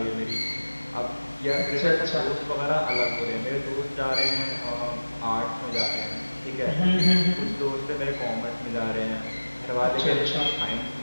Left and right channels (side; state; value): both; inverted; correlation -1.00